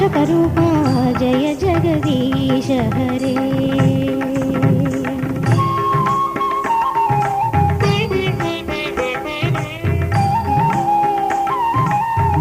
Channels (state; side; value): identical; both; correlation 1.00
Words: जय जगदीश हरे